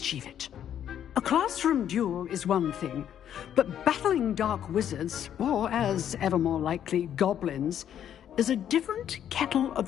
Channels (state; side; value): quieter; right; 9.9 dB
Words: it. A classroom duel is one thing, but battling dark wizards, or as ever more likely, goblins, is a different kettle